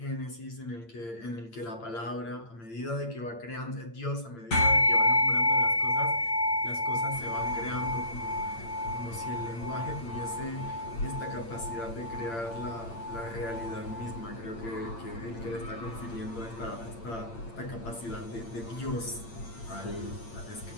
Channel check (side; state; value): right; late; 8.8 ms